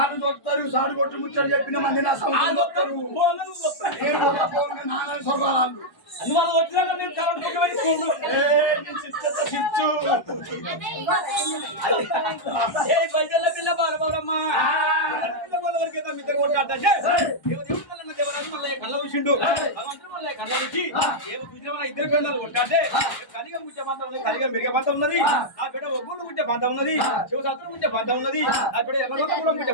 సాడు కొట్టు ముచ్చడు చెప్పిన మంది నా సౌండ్ నాన్న వాళ్ళు వచ్చినాక నేను కరెంట్ పైసల పిల్ల బాలబాబమ్మా ఇద్దరు కొట్టాడు కళ్ళ చూసిండు కళ్ళ చూసి ఇద్దరు పిల్లలు కొట్టాడే కలిగా ముచ్చే పంత ఉన్నది కలిగా మిరిగే పంత ఉన్నది ఆ బిడ్డ ఒగ్గుడు ముచ్చే పంత ఉన్నది శివశాస్త్రం ముచ్చే పంత ఉన్నది ఆ బిడ్డ ఎర్రగొండ కూడా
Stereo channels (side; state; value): right; late; 1.1 ms